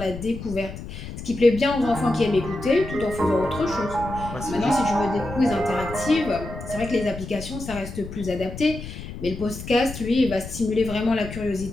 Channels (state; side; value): noise; left; rumble, 10 dB below the sound